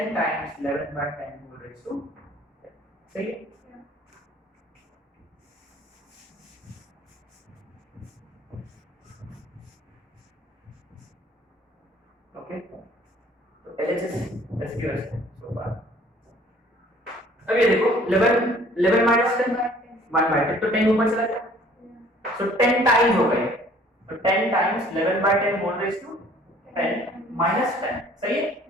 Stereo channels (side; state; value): both; normal; correlation 0.55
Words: times 11/10 whole raise to 10, सही है। ओके, तो एलएचएस एसक्यूएस सो फार। अब ये देखो 11 माइनस 10 1/10, तो 10 ऊपर चला गया, सो 10 टाइम्स हो गए, तो 10 टाइम्स 11/10 होल रेज़ टू 10 -10 सही है